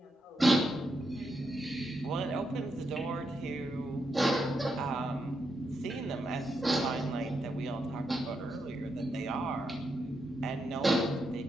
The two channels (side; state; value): both; normal; correlation 0.82